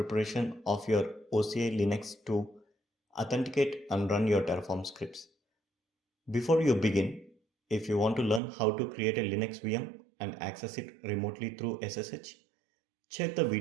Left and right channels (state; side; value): drops out; left; at 8.4 s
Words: of your OCI Linux to authenticate and run your Terraform scripts. Before you begin, if you want to learn how to create a Linux VM and access it remotely through SSH, check the